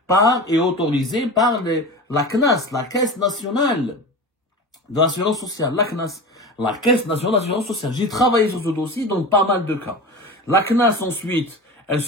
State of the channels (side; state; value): both; normal; correlation 0.30